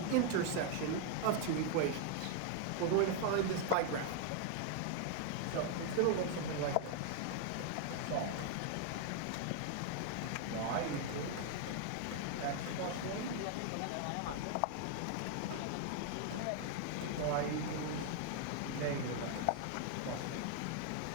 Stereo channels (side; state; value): both; different; correlation 0.00